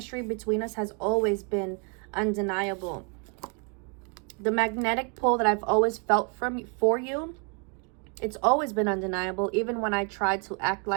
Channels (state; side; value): quieter; left; 37.9 dB